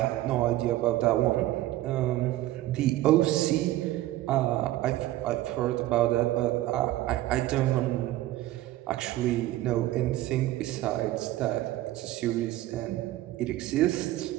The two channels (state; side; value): quieter; left; 15.5 dB